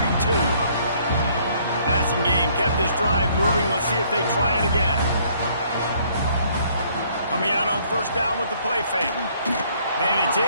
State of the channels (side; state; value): both; inverted; correlation -0.63